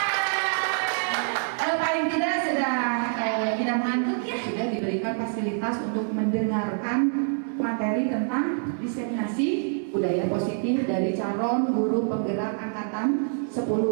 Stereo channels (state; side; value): silent; left; 61 dB below the other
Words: kalau paling tidak sudah kita mengantuk ya, sudah fasilitas untuk mendengarkan materi tentang diseminasi budaya positif dari calon guru penggerak angkatan